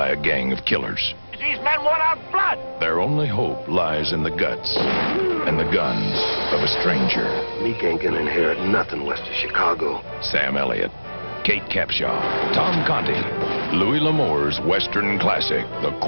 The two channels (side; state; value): both; inverted; correlation -1.00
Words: a gang of killers. These men want our blood. Their only hope lies in the guts and the guns of a stranger. Meek ain't gonna inherit nothing west of Chicago. Sam Elliott, Kate Capshaw, Tom Conti. Louis L'Amour's Western classic, The